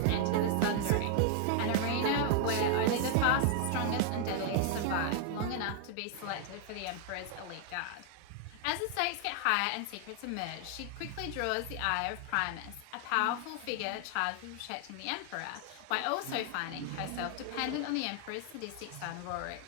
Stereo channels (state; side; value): different; both; correlation 0.00